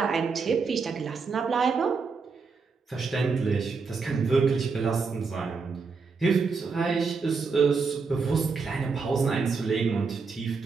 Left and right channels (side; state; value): left; quieter; 4.9 dB